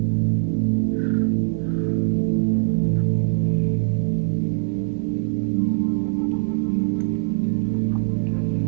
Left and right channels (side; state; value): left; silent; digital silence